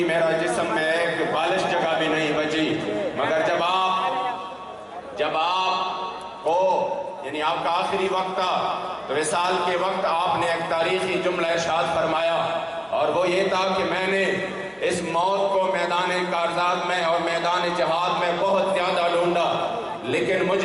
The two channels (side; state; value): both; identical; correlation 1.00